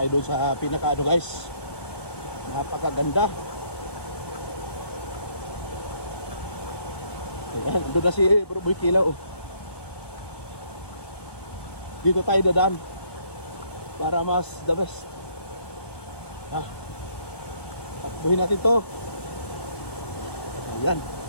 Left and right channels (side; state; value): right; late; 1.2 ms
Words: doon sa pinaka guys. Napakaganda. Ayan, doon na si Bro Boy Kilaw. Dito tayo dadaan para mas the best. Takbuhin natin to. Ayan.